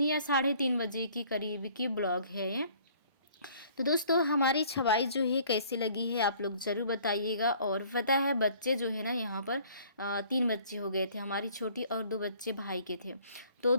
या 3:30 बजे की करीब की ब्लॉग है ये। तो दोस्तों हमारी छवाई जो है कैसी लगी है आप लोग ज़रूर बताइएगा। और पता है बच्चे जो है ना यहाँ पर 3 बच्चे हो गए थे, हमारी छोटी और 2 बच्चे भाई के थे। तो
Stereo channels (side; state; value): both; inverted; correlation -0.56